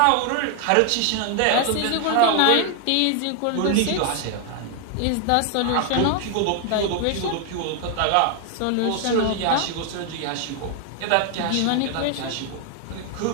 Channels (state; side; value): different; both; correlation 0.00